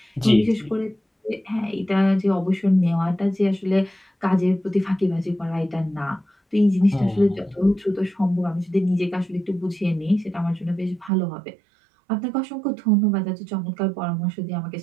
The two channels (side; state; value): left; drops out; at 11.1 s